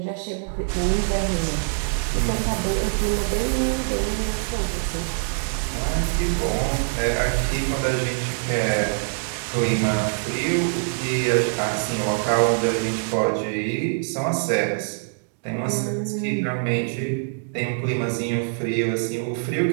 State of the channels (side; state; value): left; silent; digital silence